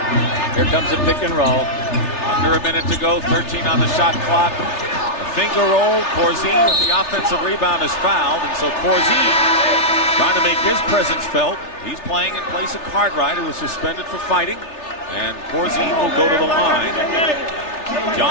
Here comes a pick and roll. Under a minute to go, 13 on the shot clock. A finger roll. Corzine with the offensive rebound is fouled, and so Corzine trying to make his presence felt. He's playing in place of Cartwright, who was suspended for fighting, and Corzine will go to the line.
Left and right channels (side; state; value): right; late; 3.3 ms